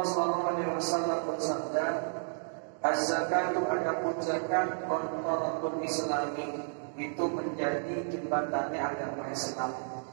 sallallahu alaihi wasallam bersabda, az-zakatu adapun zakat qantarul Islami, itu menjadi jembatannya agama Islam.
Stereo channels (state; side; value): silent; left; digital silence